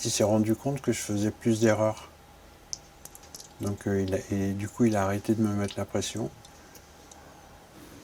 il s'est rendu compte que je faisais plus d'erreurs. Donc, et du coup, il a arrêté de me mettre la pression.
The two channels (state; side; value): identical; both; correlation 1.00